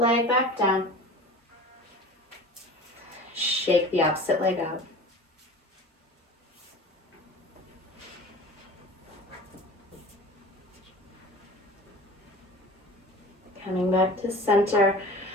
leg back down. Shake the opposite leg out. Coming back to center.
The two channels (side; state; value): both; normal; correlation 0.39